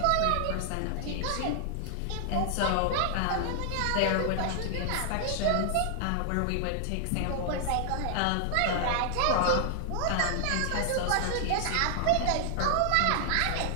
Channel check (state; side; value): different; both; correlation -0.01